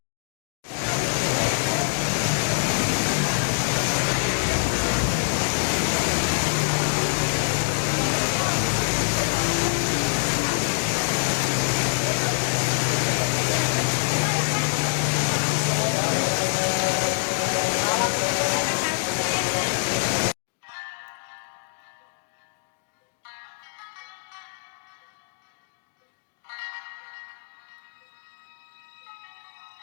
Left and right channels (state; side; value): silent; right; digital silence